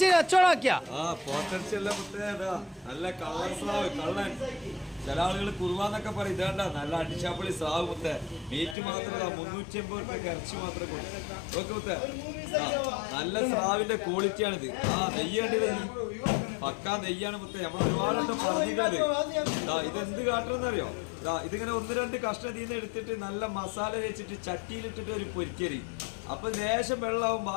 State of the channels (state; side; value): drops out; right; at 8.8 s